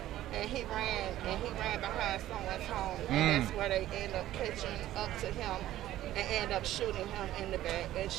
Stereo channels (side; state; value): left; quieter; 14.0 dB